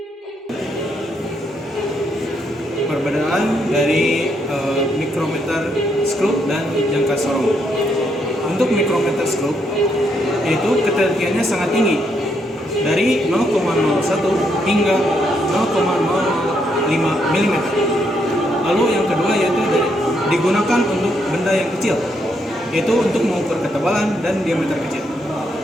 Perbedaan dari mikrometer skrup dan jangka sorong. Untuk mikrometer skrup, itu ketelitiannya sangat tinggi, dari 0,01 hingga 0,005 mm. Lalu yang kedua yaitu digunakan untuk benda yang kecil, yaitu untuk mengukur ketebalan dan diameter kecil.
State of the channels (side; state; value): both; normal; correlation 0.76